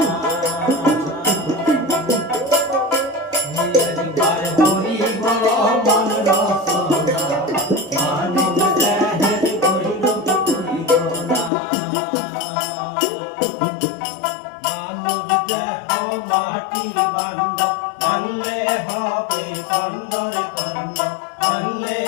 একবার হরি বল মন রসনা মানব দেহের বৈরব করিও না। মানব দেহ মাটি বান্ধ ভাঙলে হবে খণ্ডরে খণ্ড, ভাঙলে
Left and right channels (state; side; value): drops out; right; at 11.5 s